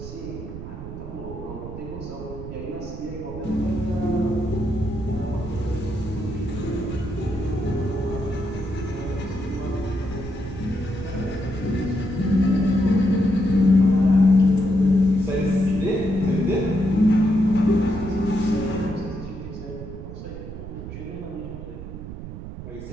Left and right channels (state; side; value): noise; right; rumble, 10 dB below the sound